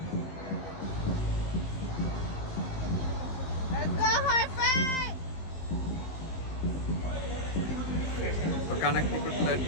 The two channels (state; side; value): late; right; 19 ms